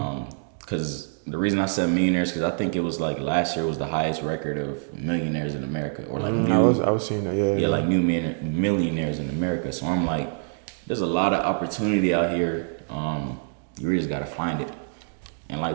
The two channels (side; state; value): left; silent; digital silence